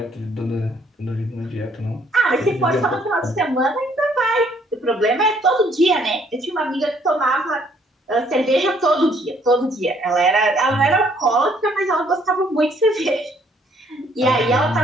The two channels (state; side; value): normal; both; correlation 0.65